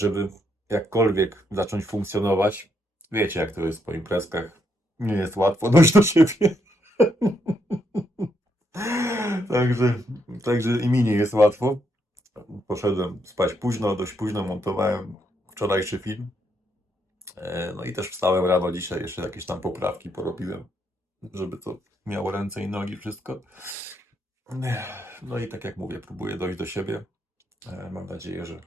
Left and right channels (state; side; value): normal; both; correlation 0.77